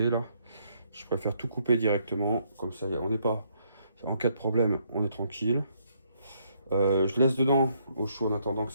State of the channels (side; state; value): both; inverted; correlation -0.71